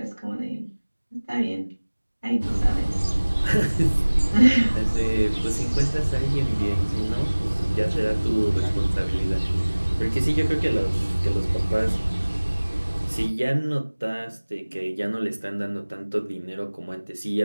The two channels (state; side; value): inverted; both; correlation -1.00